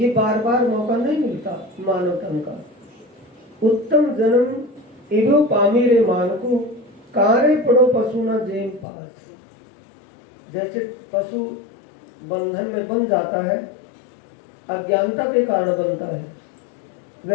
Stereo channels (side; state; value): right; drops out; at 8.8 s